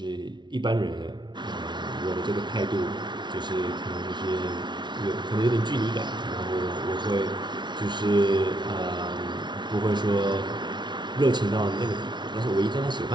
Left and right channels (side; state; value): left; late; 0.22 ms